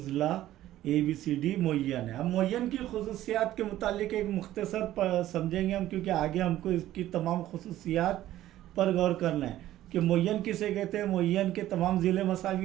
ABCD मुय्यन है। अब मुय्यन की खुसूसियात के मुतालिक एक मुख्तसर समझेंगे हम, क्योंकि आगे हमको इसकी तमाम खुसूसियात पर गौर करना है कि मुय्यन किसे कहते हैं। मुय्यन के तमाम ज़िले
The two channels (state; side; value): quieter; left; 13.9 dB